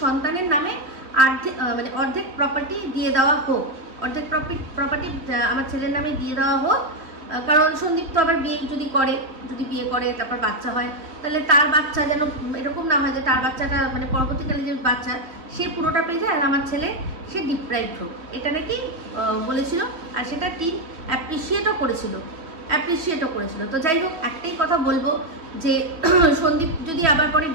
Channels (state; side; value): late; left; 3.1 ms